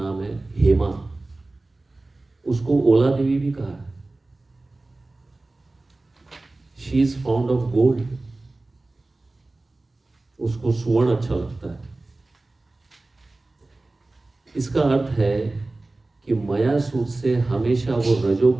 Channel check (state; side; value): quieter; left; 3.1 dB